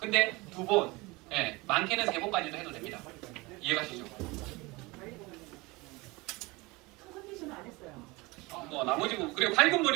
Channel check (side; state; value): left; quieter; 23.7 dB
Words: 2번, 많게는 3번까지도 해도 됩니다. 이해가시죠? 컨디션은 안 했어요. 뭐 나머지 부분 그리고 밝은